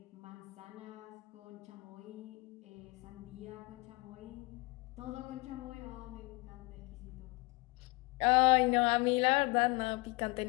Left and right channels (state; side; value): quieter; right; 26.2 dB